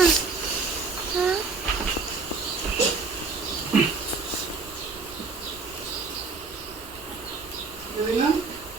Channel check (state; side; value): quieter; left; 4.3 dB